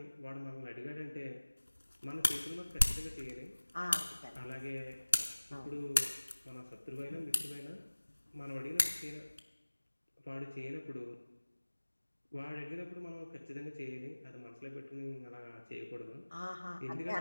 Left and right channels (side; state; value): both; inverted; correlation -1.00